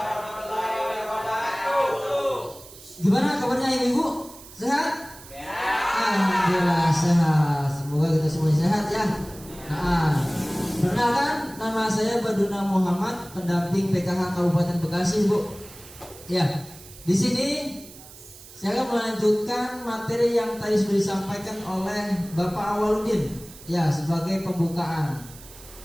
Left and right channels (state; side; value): noise; right; hiss, 19 dB below the sound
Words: wabarakatuh. Gimana kabarnya ibu? Sehat? Ya. Alhamdulillah sehat. Semoga kita semua sehat ya. Perkenalkan, nama saya Baduna Muhammad, pendamping PKH Kabupaten Bekasi, Bu. Ya, di sini saya akan melanjutkan materi yang tadi sudah disampaikan oleh Bapak Awaludin, ya, sebagai pembukaan.